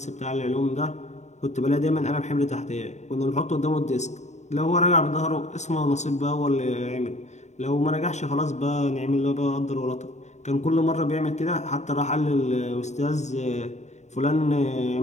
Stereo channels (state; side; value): late; right; 0.33 ms